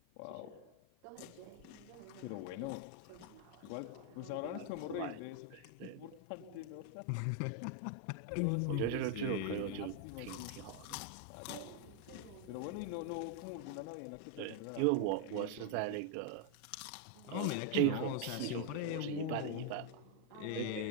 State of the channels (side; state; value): both; different; correlation 0.01